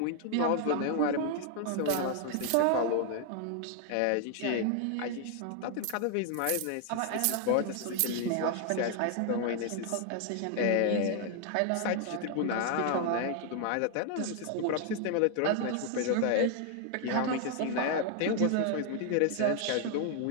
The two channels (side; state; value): both; different; correlation 0.00